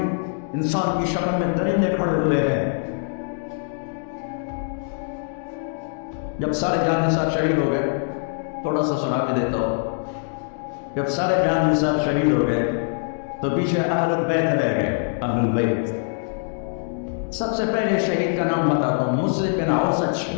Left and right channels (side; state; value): right; silent; digital silence